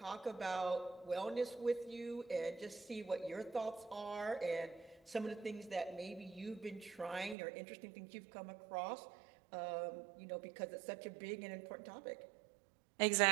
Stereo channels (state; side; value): drops out; left; at 7.4 s